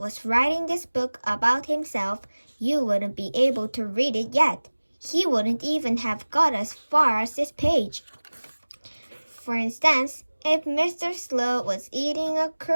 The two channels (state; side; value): inverted; both; correlation -1.00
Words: writing this book about himself, you wouldn't be able to read it yet. He wouldn't even have got as far as this page. For instance, if Mr. Slow was eating a